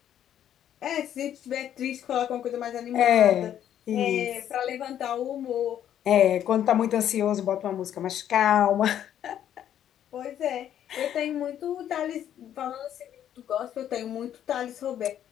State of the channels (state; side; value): quieter; right; 10.5 dB